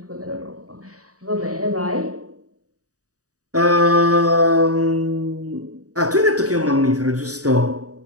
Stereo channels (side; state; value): left; late; 0.66 ms